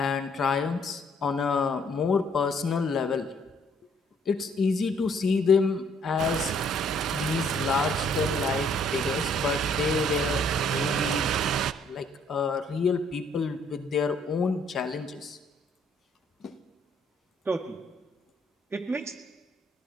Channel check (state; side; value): normal; both; correlation 0.65